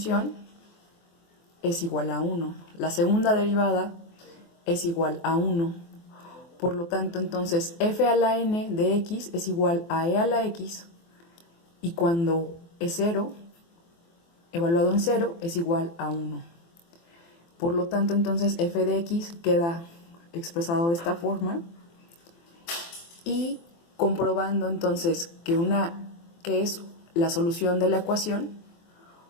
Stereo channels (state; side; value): late; right; 24 ms